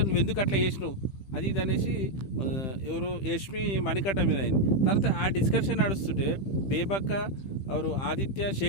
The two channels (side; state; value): right; late; 15 ms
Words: నువ్వు ఎందుకు అట్లా చేసినావు అది ఇది అనేసి ఎవరు యష్మి మణికట్ట మీద అయింది. తర్వాత ఆ డిస్కషన్ నడుస్తుంటే బేబక్క ఎవరు ఆదిత్య